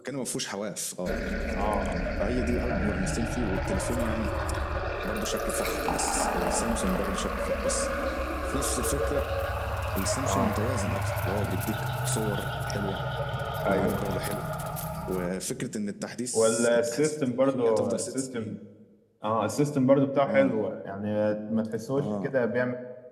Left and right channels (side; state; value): both; identical; correlation 1.00